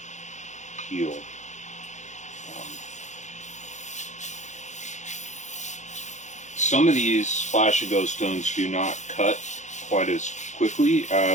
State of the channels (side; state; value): right; late; 0.35 ms